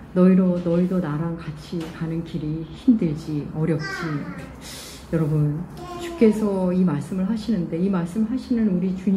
너희도 나랑 같이 가는 길이 힘들지, 어렵지. 여러분, 주께서 이 말씀을 하시는데 이 말씀을 하시는 우리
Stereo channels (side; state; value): both; identical; correlation 1.00